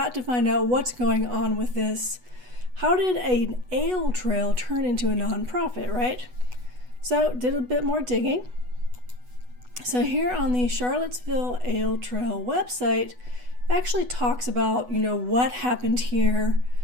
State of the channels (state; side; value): late; left; 8.1 ms